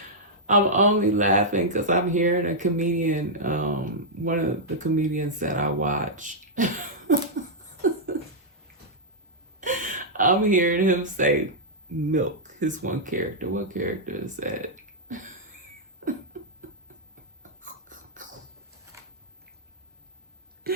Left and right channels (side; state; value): both; normal; correlation -0.08